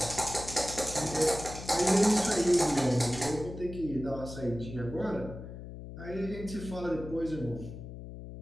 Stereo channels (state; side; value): noise; left; hum, 11 dB below the sound